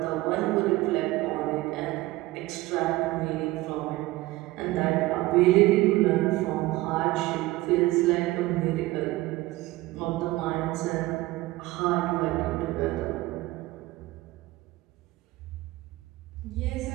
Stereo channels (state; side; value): quieter; left; 18.8 dB